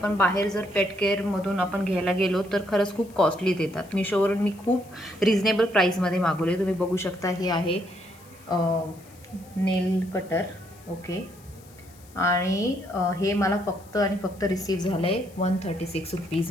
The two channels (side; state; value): left; noise; hiss, 25 dB below the sound